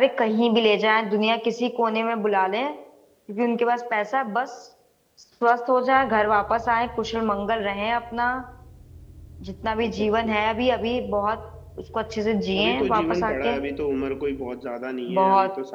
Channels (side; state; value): both; identical; correlation 1.00